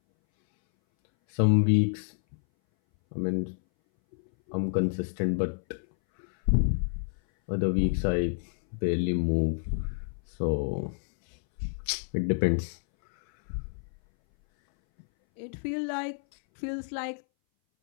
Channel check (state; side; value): silent; right; 59 dB below the other